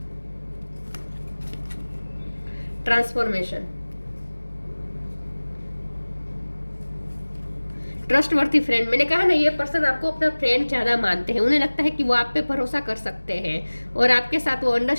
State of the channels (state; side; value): inverted; both; correlation -1.00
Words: transformation. Trustworthy friend, मैंने कहा ना, ये पर्सन आपको अपना फ्रेंड ज़्यादा मानते हैं। उन्हें लगता है कि वो आप पे भरोसा कर सकते हैं, और आपके साथ वो